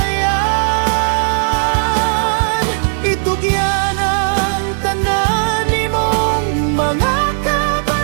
Itugyan ang tanan nimong mga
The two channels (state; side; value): silent; left; digital silence